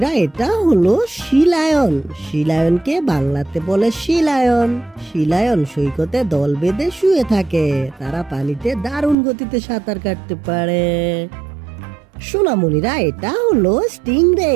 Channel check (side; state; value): left; drops out; at 9.2 s